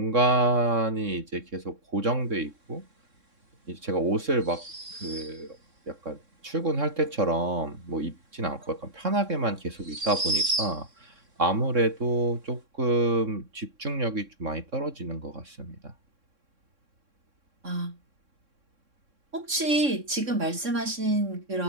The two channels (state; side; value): late; left; 3.6 ms